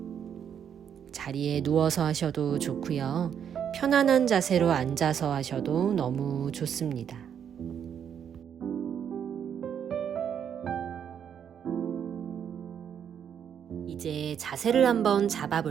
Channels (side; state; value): left; quieter; 8.4 dB